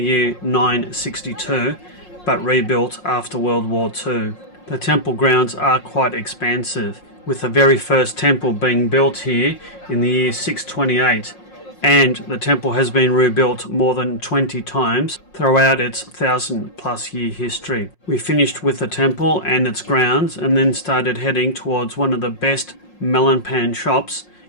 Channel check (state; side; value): late; right; 5.6 ms